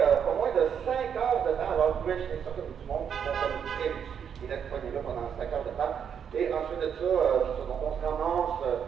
pas moins de 5 heures de temps. Alors, vous pouvez imaginer ça comme du monde qui sont très dessus, qui restent pognés là pendant 5 heures de temps. Et ensuite de ça, donc on se ramasse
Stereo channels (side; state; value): left; quieter; 7.9 dB